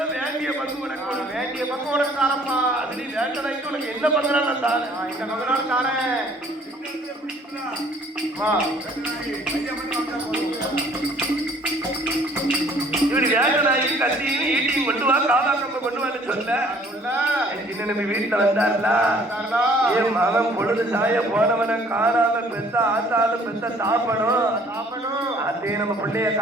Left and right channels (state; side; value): normal; both; correlation 0.57